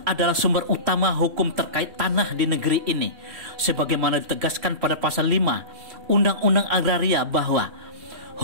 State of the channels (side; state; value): left; late; 3.0 ms